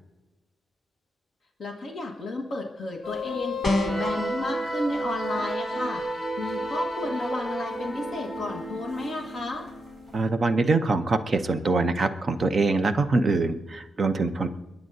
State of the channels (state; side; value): normal; both; correlation 0.84